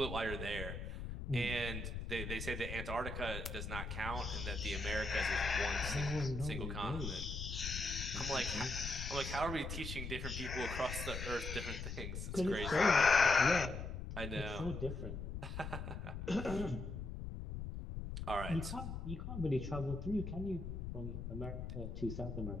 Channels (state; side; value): noise; left; rumble, 5 dB below the sound